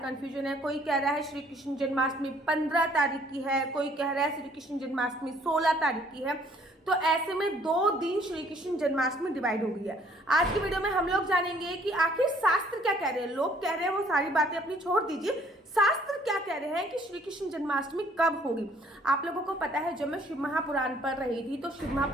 है। कोई कह रहा है श्री कृष्ण जन्माष्टमी 15 तारीख की है, कोई कह रहा है श्री कृष्ण जन्माष्टमी 16 तारीख की है। तो ऐसे में 2 दिन श्री कृष्ण जन्माष्टमी डिवाइड हो गई है। आज की वीडियो में हम लोग जानेंगे कि आखिर शास्त्र क्या कह रहे हैं। लोग कह रहे हैं वो सारी बातें अपनी छोड़ दीजिए, शास्त्र क्या कह रहे हैं कि श्री कृष्ण जन्माष्टमी कब होगी। आप लोगों को पता है, जब मैं शिव महापुराण पढ़ रही थी तो शिव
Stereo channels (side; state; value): both; normal; correlation 0.60